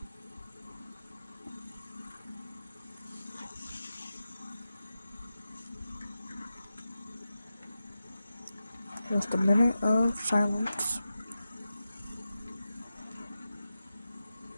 Just a minute of silence.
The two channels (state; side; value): inverted; both; correlation -0.92